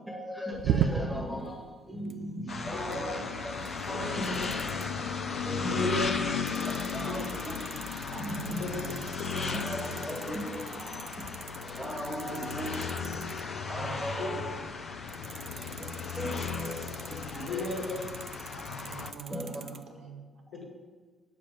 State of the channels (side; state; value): both; normal; correlation 0.57